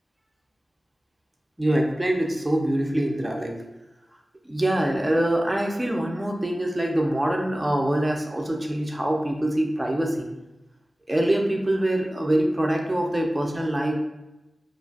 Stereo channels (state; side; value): normal; both; correlation 0.97